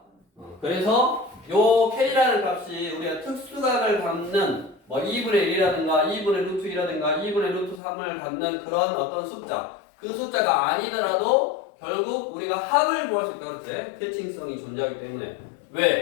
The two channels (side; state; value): right; drops out; at 7.8 s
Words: 그래서 요 k라는 값이 우리가 특수각을 갖는 뭐 2분의 1이라든가 2분의 루트 2라든가 2분의 루트 3을 갖는 그런 어떤 숫자, 그 숫자가 아니더라도 결국 우리가 합을 구할 수 있다 그랬지. 대칭성이 존재하기 때문에.